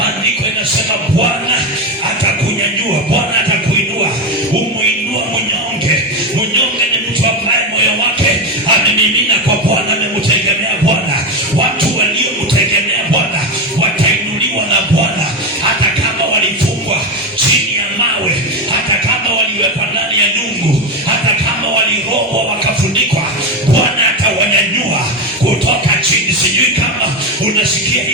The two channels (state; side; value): normal; both; correlation 0.15